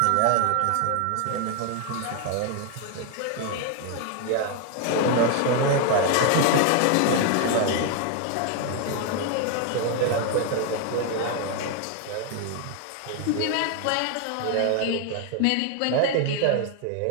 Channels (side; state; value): both; different; correlation 0.00